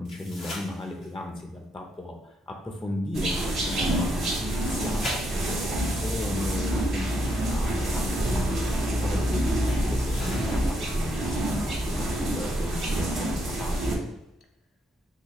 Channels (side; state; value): both; normal; correlation 0.78